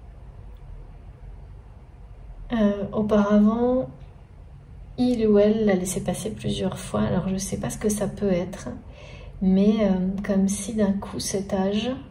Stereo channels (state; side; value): identical; both; correlation 1.00